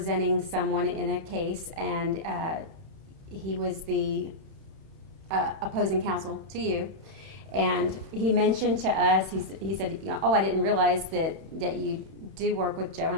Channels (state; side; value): late; left; 31 ms